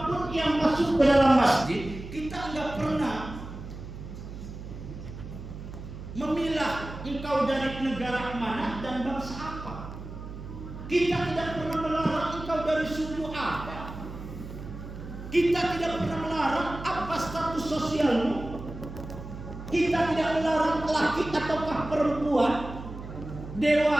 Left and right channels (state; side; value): noise; right; hum, 11 dB below the sound